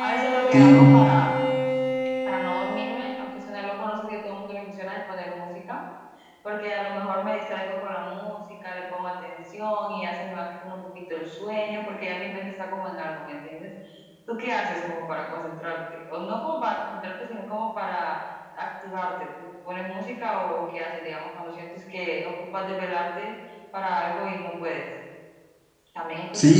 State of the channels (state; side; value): identical; both; correlation 1.00